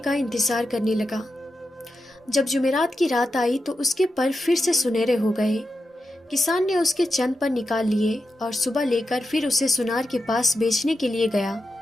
انتظار کرنے لگا۔ جب جمعرات کی رات آئی تو اس کے پر پھر سے سنہرے ہو گئے۔ کسان نے اس کے چند پر نکال لیے اور صبح لے کر پھر اسے سنار کے پاس بیچنے کے لیے گیا۔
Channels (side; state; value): both; normal; correlation 0.88